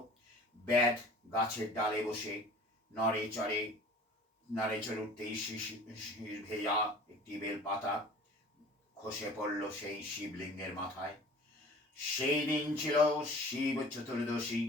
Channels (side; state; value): both; normal; correlation 0.45